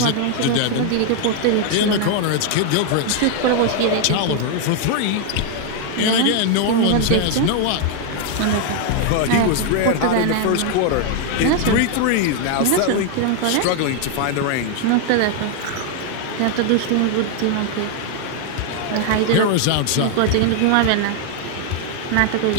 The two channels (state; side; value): different; both; correlation 0.00